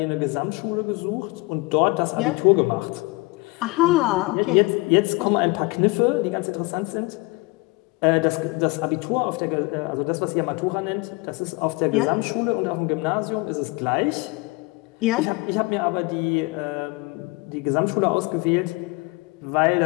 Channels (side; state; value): right; quieter; 25.4 dB